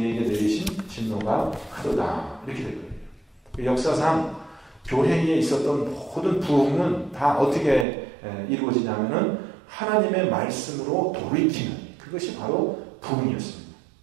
내리신 진노가 크도다. 이렇게 될 거예요. 역사상 교회에 있었던 모든 부흥은 다 어떻게 이루어지냐면은 하나님의 말씀으로 돌이키는 그것이 바로 부흥이었습니다.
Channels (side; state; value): left; drops out; at 7.9 s